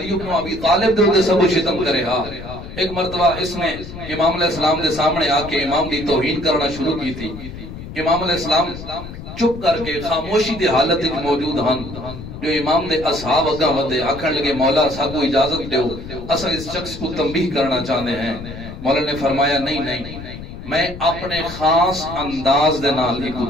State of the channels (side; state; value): left; noise; rumble, 12 dB below the sound